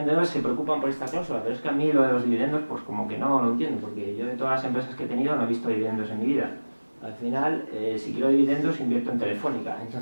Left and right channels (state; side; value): inverted; both; correlation -1.00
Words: se preocupan por esta cláusula, pero es que a mí lo de los dividendos, pues como que no lo entiendo, porque yo de todas las empresas que he tenido no he visto dividendos en mi vida. Al final, si quiero dividendos, invierto en Telefónica.